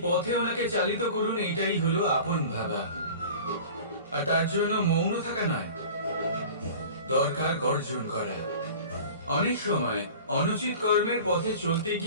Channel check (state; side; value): inverted; both; correlation -0.40